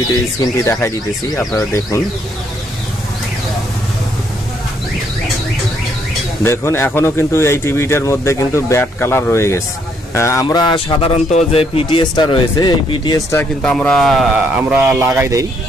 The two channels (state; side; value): normal; both; correlation 0.71